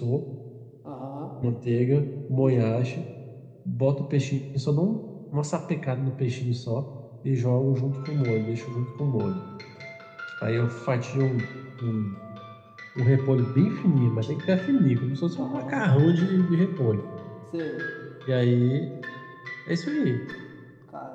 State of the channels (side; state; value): both; identical; correlation 1.00